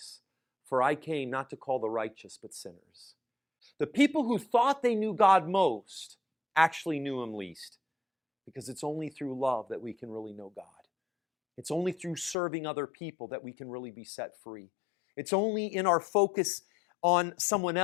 For I came not to call the righteous, but sinners. The people who thought they knew God most actually knew him least. Because it's only through love that we can really know God. It's only through serving other people that we can really be set free. It's only in our focus on someone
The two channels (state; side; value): drops out; right; at 12.4 s